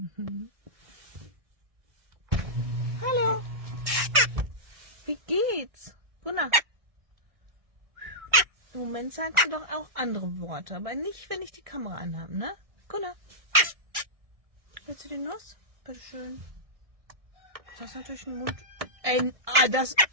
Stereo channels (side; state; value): left; late; 1.6 ms